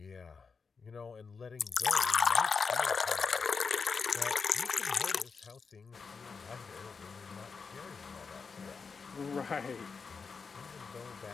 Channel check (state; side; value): quieter; right; 5.2 dB